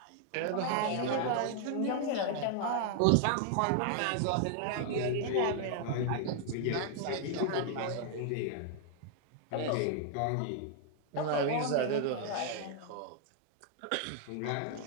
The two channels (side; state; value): both; different; correlation 0.00